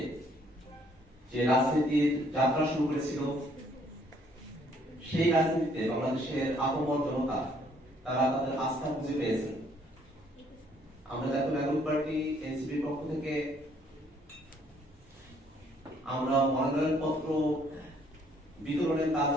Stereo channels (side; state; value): both; normal; correlation 0.65